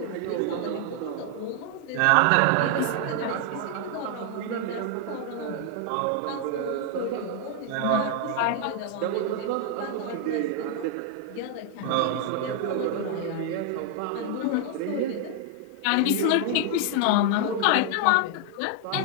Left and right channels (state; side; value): different; both; correlation 0.00